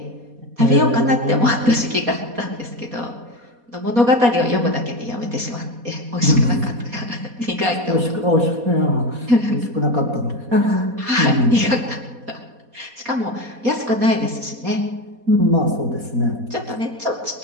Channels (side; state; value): left; late; 4.2 ms